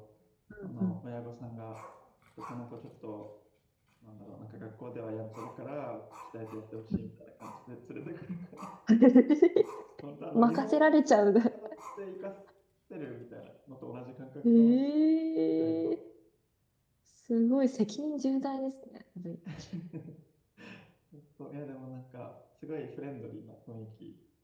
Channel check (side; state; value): both; identical; correlation 1.00